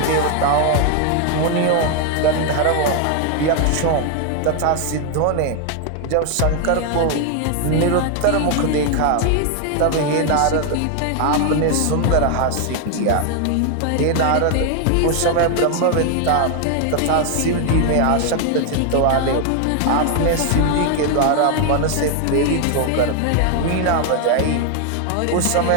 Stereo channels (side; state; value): both; different; correlation 0.00